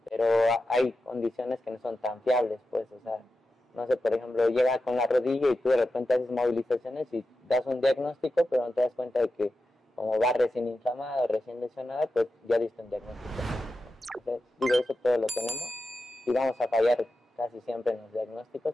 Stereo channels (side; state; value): both; normal; correlation 0.90